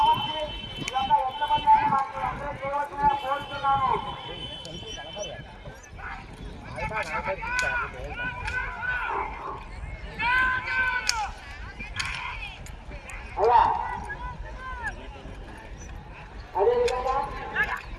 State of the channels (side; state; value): both; identical; correlation 1.00